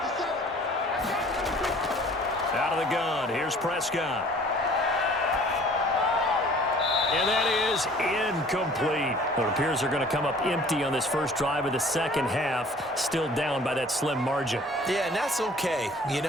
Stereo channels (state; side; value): normal; both; correlation 0.51